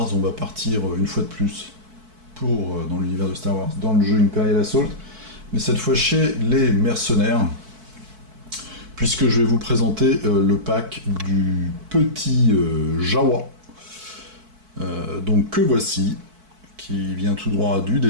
on va partir une fois de plus dans l'univers de Star Wars, dans le jeu Imperial Assault, mais cette fois chez les mercenaires, puisque je vais vous présenter le pack du petit Jawa, donc que voici, qui vient tout droit du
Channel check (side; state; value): left; late; 4.6 ms